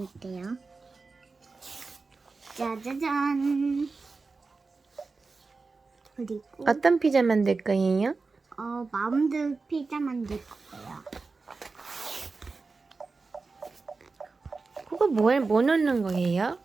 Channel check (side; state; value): left; quieter; 4.1 dB